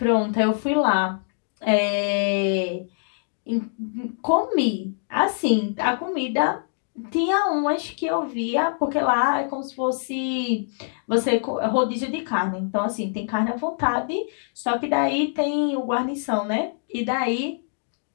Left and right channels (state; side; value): silent; right; digital silence